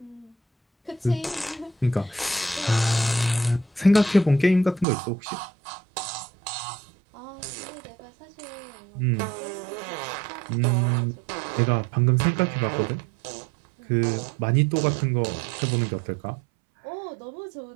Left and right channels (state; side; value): drops out; left; at 4.9 s